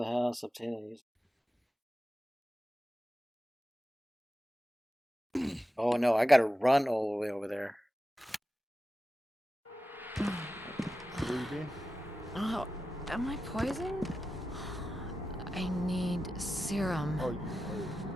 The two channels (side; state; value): both; normal; correlation 0.92